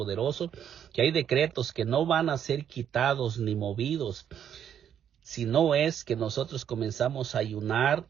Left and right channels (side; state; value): left; quieter; 9.1 dB